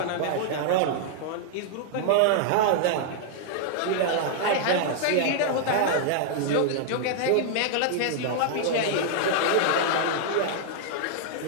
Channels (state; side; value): different; both; correlation -0.01